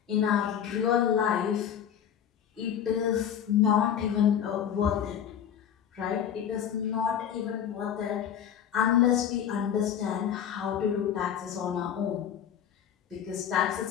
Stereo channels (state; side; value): quieter; right; 9.1 dB